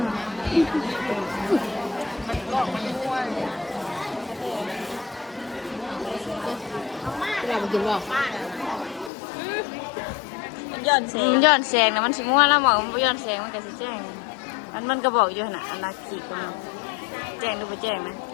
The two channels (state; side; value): drops out; right; at 9.1 s